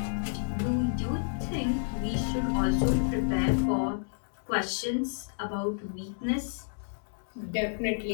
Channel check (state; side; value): silent; right; digital silence